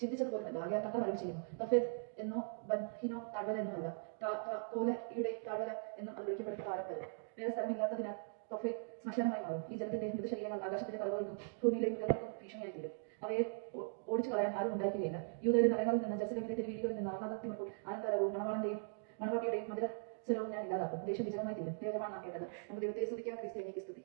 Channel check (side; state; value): left; silent; digital silence